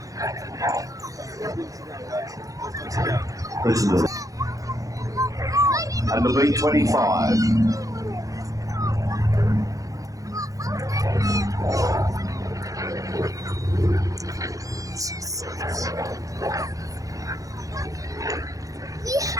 Listen to that. And the B25.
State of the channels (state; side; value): late; left; 0.17 ms